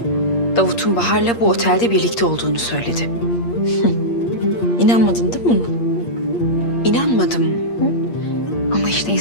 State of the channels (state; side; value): late; right; 8.6 ms